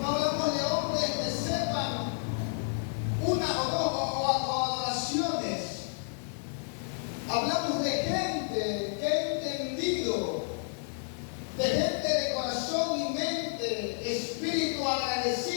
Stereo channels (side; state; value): right; silent; 57 dB below the other